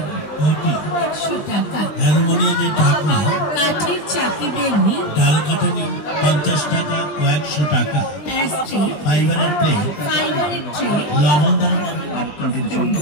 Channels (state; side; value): late; right; 20 ms